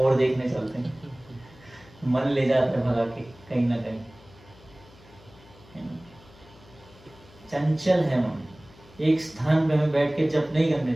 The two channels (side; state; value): left; noise; hum, 24 dB below the sound